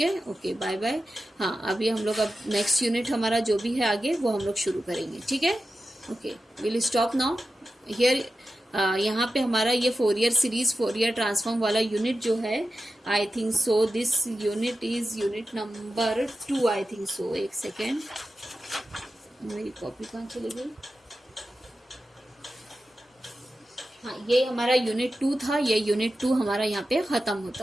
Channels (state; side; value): normal; both; correlation 0.92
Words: है। Okay bye bye. हाँ अभी हम लोग अब नेक्स्ट यूनिट हमारा जो भी है आगे वो हम लोग शुरू करेंगे, ठीक है। Okay will stop now here. यहाँ पे हमारा ये फोरियर सीरीज फोरियर ट्रांसफॉर्म वाला यूनिट जो है, I think so this unit is unit number 2, I think so. एक सेकेंड, मेरी कॉपी कहाँ चली गई? हाँ ये हमारा यूनिट 2 था, ये यूनिट 2 हमारा यहाँ पे खत्म